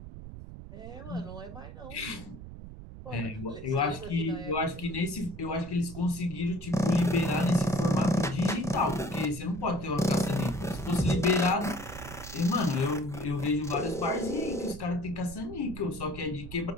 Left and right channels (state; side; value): noise; right; rumble, 13 dB below the sound